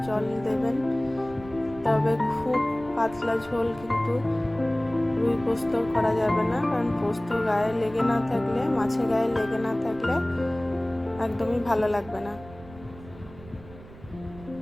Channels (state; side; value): noise; right; rumble, 19 dB below the sound